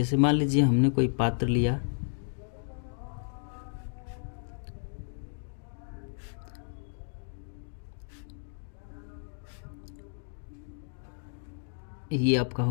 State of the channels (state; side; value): silent; right; digital silence